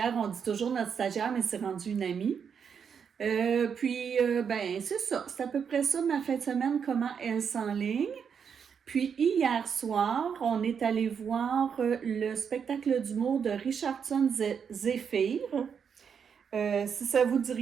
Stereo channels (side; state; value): left; quieter; 7.0 dB